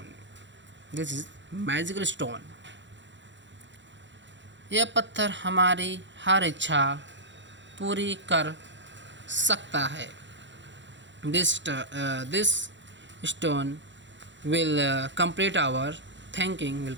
stone. यह पत्थर हमारी हर इच्छा पूरी कर सकता है। This stone will complete our thinking, will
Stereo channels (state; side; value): late; left; 0.53 ms